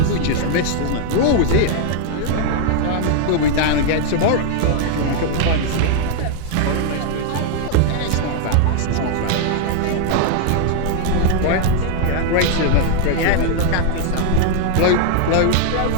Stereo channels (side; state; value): both; different; correlation 0.00